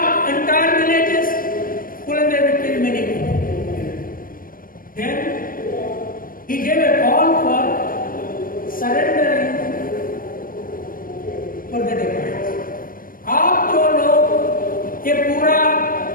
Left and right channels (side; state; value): right; late; 0.41 ms